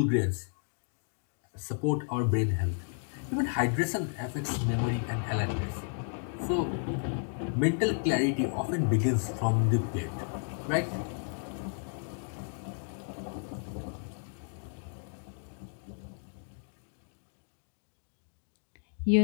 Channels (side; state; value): right; silent; 56 dB below the other